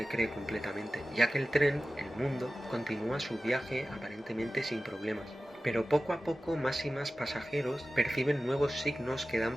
cree completamente, ya que el tren, el mundo, continúa su viaje aparentemente sin problemas. Pero poco a poco más y más pasajeros perciben nuevos signos que dan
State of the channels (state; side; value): normal; both; correlation 0.95